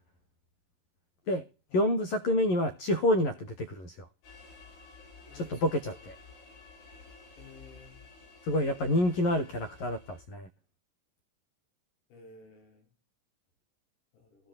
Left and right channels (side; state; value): right; late; 11 ms